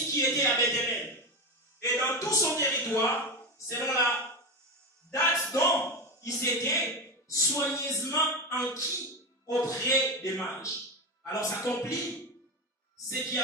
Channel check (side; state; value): both; normal; correlation 0.18